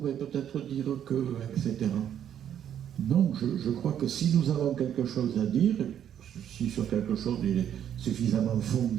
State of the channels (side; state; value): left; quieter; 9.7 dB